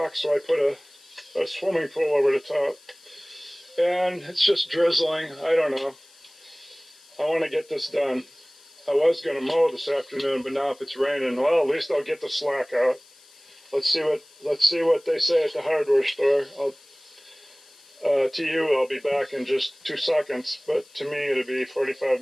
so I put a swimming pool over the top. And it's just drizzling. I don't know. I want to get this done. I was going to mow this afternoon, but now if it's raining, well, at least I'll get the slack out. Let's see what they say at the hardware store. To you, I'll be back in just 2 seconds, but to me, it'll be 45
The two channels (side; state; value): left; noise; hiss, 26 dB below the sound